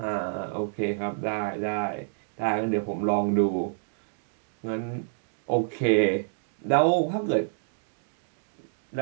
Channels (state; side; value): silent; left; digital silence